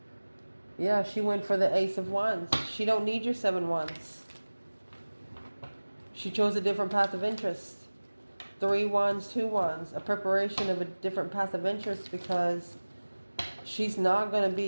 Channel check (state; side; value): inverted; both; correlation -1.00